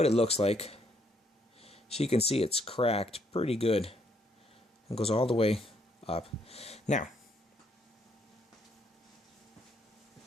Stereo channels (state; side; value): normal; both; correlation 0.71